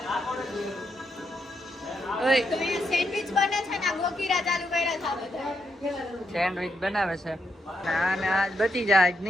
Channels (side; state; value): both; normal; correlation 0.81